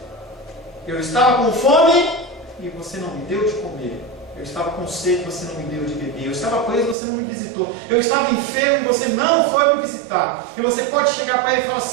eu estava com fome e você não me deu de comer. Eu estava com sede e você não me deu de beber. Eu estava preso e você não me visitou. Eu estava enfermo e você não foi me visitar. E você pode chegar para ele e falar:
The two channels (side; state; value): left; drops out; at 7.0 s